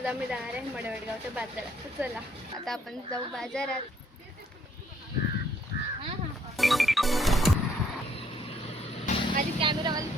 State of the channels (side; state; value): both; normal; correlation 0.66